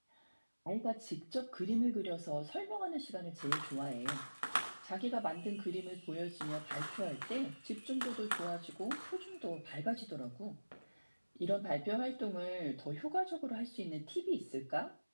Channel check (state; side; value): inverted; both; correlation -1.00